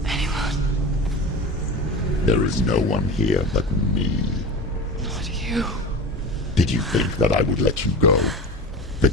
Anyone? There is no one here but me. Not you. Did you think that I would let you go?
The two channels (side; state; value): both; normal; correlation 0.30